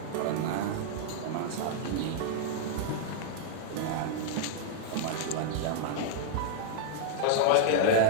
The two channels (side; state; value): both; different; correlation -0.01